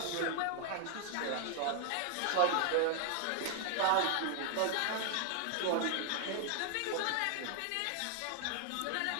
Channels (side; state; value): both; different; correlation 0.00